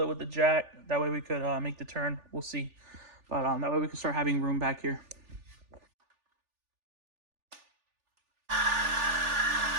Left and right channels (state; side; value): late; left; 3.4 ms